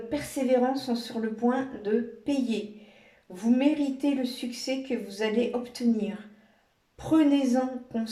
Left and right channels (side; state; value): both; identical; correlation 1.00